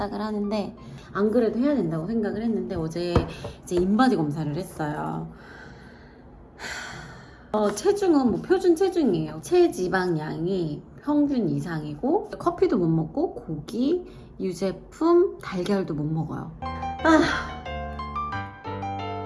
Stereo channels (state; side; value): identical; both; correlation 1.00